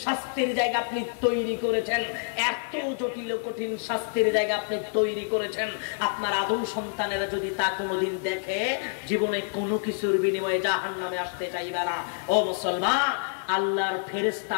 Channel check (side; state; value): right; silent; digital silence